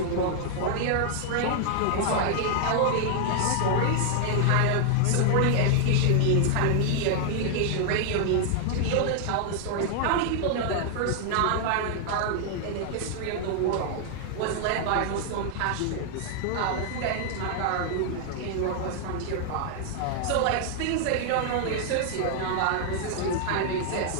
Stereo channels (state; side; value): different; both; correlation 0.00